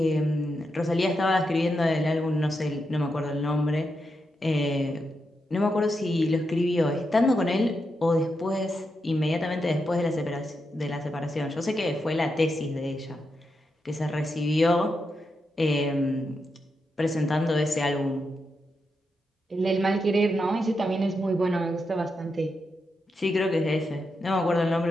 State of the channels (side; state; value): both; normal; correlation 0.85